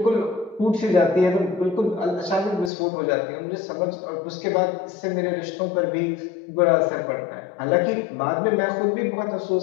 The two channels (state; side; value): drops out; right; at 2.7 s